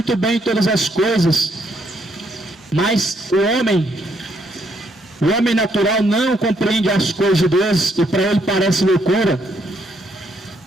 bem todas as coisas, mas o homem natural não compreende as coisas de Deus e para ele parece loucura.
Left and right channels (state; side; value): normal; both; correlation 0.73